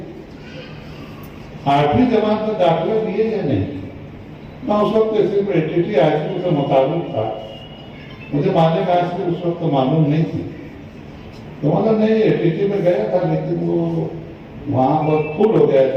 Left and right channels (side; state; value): both; identical; correlation 1.00